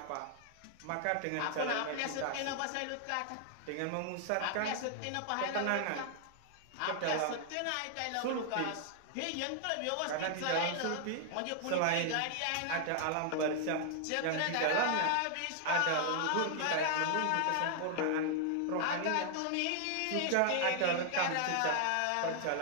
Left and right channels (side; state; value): both; different; correlation 0.00